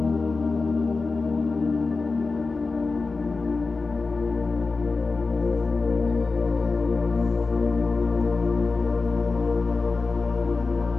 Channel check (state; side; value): quieter; right; 4.0 dB